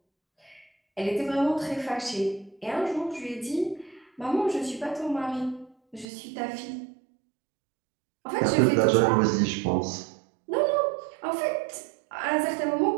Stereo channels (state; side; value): drops out; left; at 6.1 s